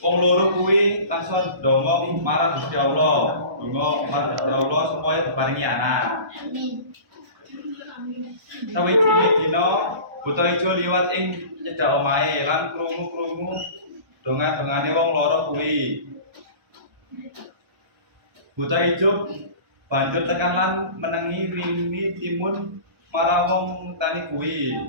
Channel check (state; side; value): late; left; 1.3 ms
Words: wong loro kuwi langsung ndonga marang Gusti Allah. Donga marang Gusti Allah supaya diparingi anak. Sawijine dina buta ijo liwat ing cedhak omahe lan krungu-krungu donga-dongane wong loro kuwi. Buta ijo banjur tekan lan menengi wini timun marang wong tani kuwi